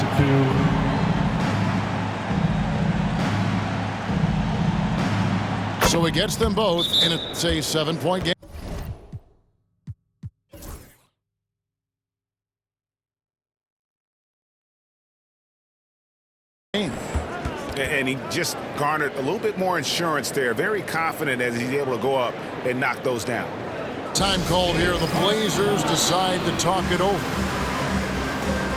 2. So he gets them both, and it's a 7-point game. And he just garnered a little bit more insurance there. Very confident as he's able to go up and knock those down. Time called here. The Blazers decide to talk it over.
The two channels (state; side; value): identical; both; correlation 1.00